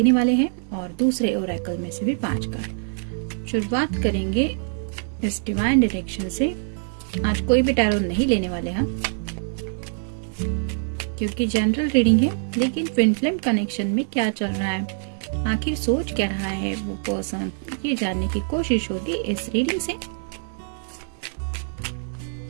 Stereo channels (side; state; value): left; silent; digital silence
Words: वाले हैं और दूसरे ओरेकल में से भी 5 कार्ड। शुरुआत करेंगे इस डिवाइन डायरेक्शन से। आज कोई भी टैरो नहीं लेने वाले हम, क्योंकि जनरल रीडिंग है, लेकिन ट्विन फ्लेम कनेक्शन में क्या चल रहा है, आखिर सोच क्या रहा है वो पर्सन, ये जानने की कोशिश होगी इस रीडिंग से।